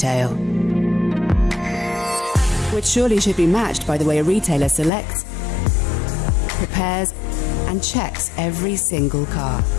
which surely should be matched by the way a retailer selects, prepares, and checks every single car.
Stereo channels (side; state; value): right; drops out; at 4.9 s